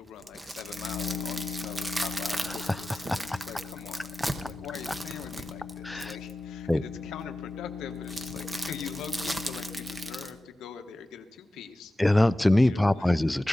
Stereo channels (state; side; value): normal; both; correlation 0.94